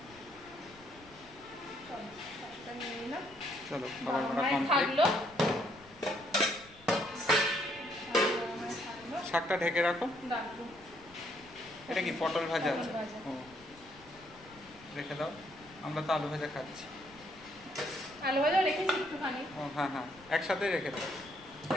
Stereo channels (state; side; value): noise; left; rumble, 24 dB below the sound